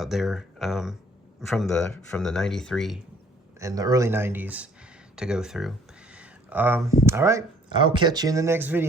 there from the 93 and the early 90s to go through. All right, I'll catch you in the next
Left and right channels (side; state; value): both; normal; correlation 0.58